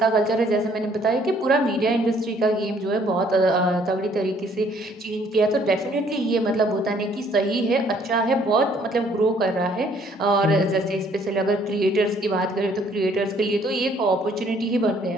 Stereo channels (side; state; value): both; normal; correlation 0.62